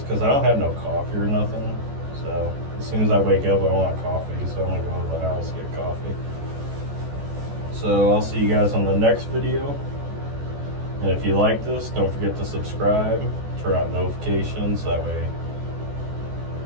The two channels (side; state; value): left; late; 14 ms